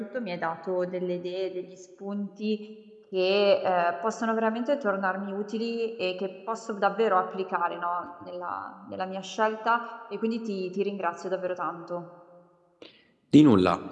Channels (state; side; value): identical; both; correlation 1.00